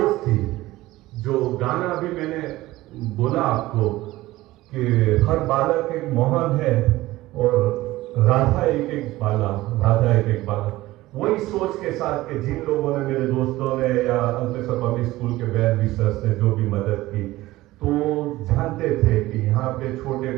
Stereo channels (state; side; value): quieter; left; 17.6 dB